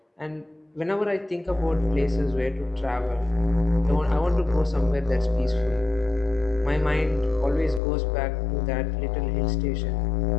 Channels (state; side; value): drops out; right; at 7.8 s